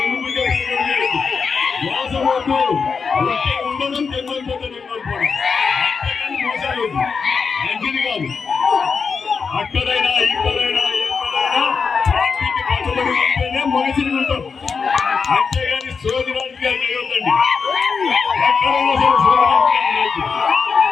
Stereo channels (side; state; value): right; quieter; 5.4 dB